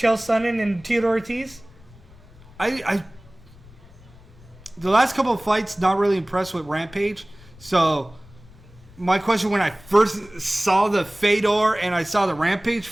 Sonnen and Theodore Ortiz? The last couple of fights, not really impressed with Rampage. So, my question when I first saw the Fedor and I saw the Rampage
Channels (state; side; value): noise; left; rumble, 23 dB below the sound